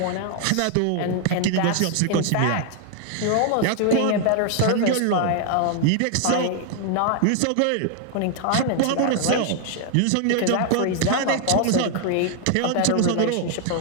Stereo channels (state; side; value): different; both; correlation 0.00